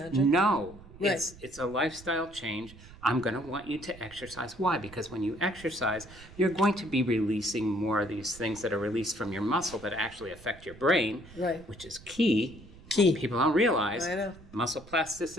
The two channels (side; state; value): right; noise; rumble, 20 dB below the sound